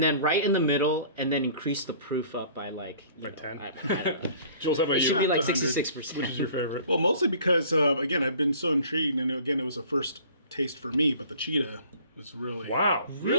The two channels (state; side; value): inverted; both; correlation -0.50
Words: then right in the middle, and then increase the proof up by like 10? I don't know. Jules, how about It you? should be like 66%. Which is your favorite? Well, mostly because, again, I've been so intrigued, and again, it was a first taste for me, but the Chita was really... Wow.